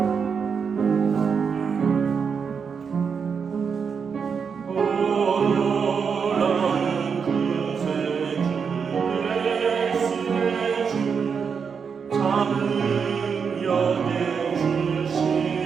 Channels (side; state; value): left; quieter; 6.2 dB